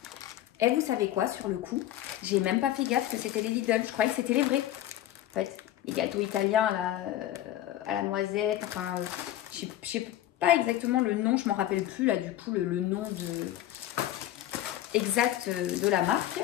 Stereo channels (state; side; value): quieter; right; 13.2 dB